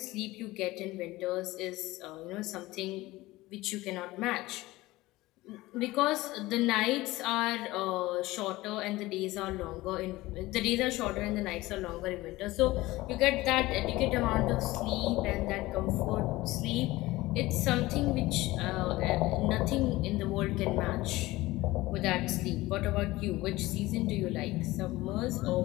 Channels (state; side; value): quieter; right; 18.9 dB